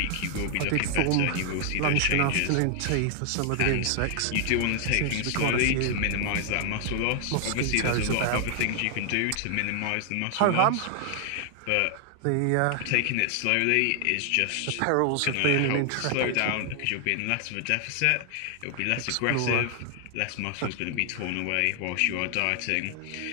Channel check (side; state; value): both; different; correlation 0.00